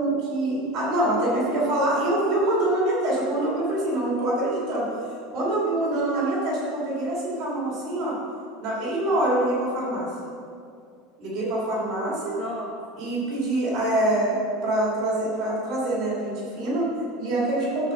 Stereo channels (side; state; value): both; normal; correlation 0.31